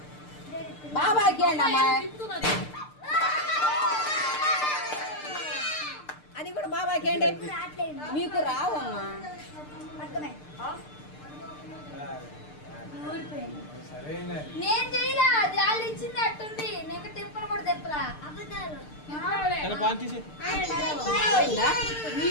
బాబాకి అండి అమ్మాయి అది కూడా బాబాకి అండి మీకు రావమ్మా నేను చేయలా వాళ్ళు ఇచ్చింది అట్టుంది నేను తిప్పలు కూడా తిప్పలా అబద్ధాలు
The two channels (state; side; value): late; right; 6.7 ms